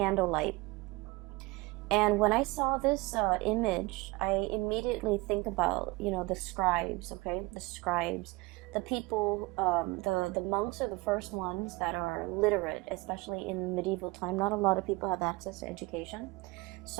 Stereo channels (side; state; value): left; quieter; 23.2 dB